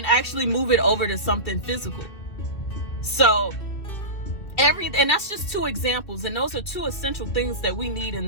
move it over to something physical. So and that's just 2 examples, and those are 2 essential things that we need in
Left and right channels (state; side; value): late; right; 2.7 ms